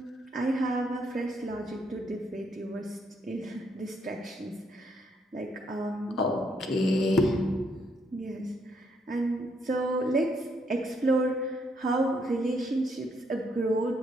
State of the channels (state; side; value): normal; both; correlation 0.73